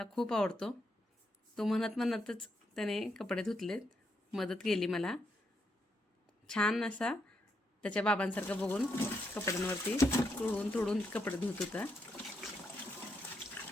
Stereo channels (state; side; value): normal; both; correlation 0.79